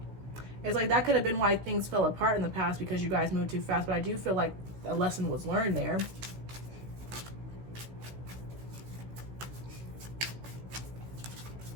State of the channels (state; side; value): late; left; 16 ms